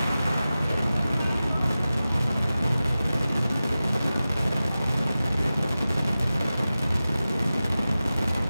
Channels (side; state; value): both; inverted; correlation -0.95